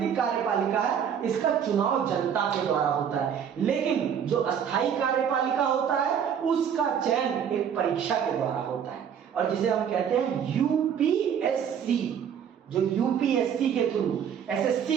कार्यपालिका है, इसका चुनाव जनता के द्वारा होता है। लेकिन जो अस्थायी कार्यपालिका होता है, उसका चयन एक परीक्षा के द्वारा होता है, और जिसे हम कहते हैं यूपीएससी। जो यूपीएससी के थ्रू,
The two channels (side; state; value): left; quieter; 8.2 dB